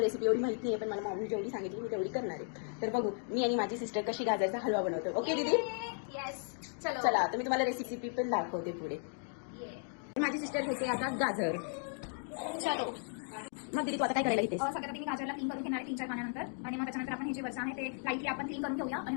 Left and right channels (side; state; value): right; silent; 54 dB below the other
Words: रेसिपी एवढी माहिती नाही, पण मला मम्मी जेवढी सांगितली मी तेवढी करणार आहे. तर बघू मी आणि माझी सिस्टर कशी गाजरचा हलवा बनवतो. ओके दीदी? येस. चलो चला, तर मी तुम्हाला रेसिपी पण दाखवते पुढे. माझी सिस्टर घेते आता गाजर. चलो मग दीदी तू आता काय करायला घेतेस? सगळ्यात आधी मी गाजरला क्लीन करून घेणार आहे 3-4 पाण्यानंतर, आणि मग त्याच्यानंतर आपण हे जे वरचं आहे ते लाईटली आपण क्लीन करून घेऊया आणि